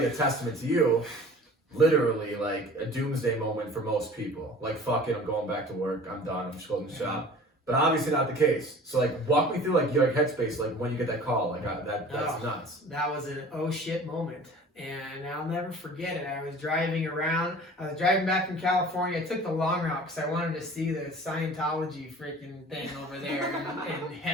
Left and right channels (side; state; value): both; normal; correlation 0.44